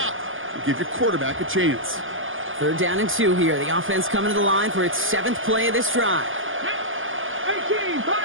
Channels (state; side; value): late; left; 0.58 ms